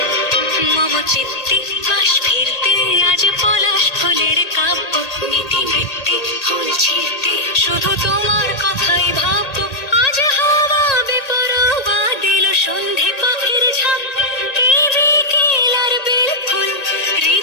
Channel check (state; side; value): late; right; 1.8 ms